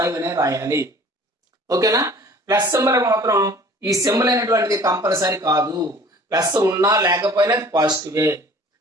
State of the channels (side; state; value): both; normal; correlation 0.49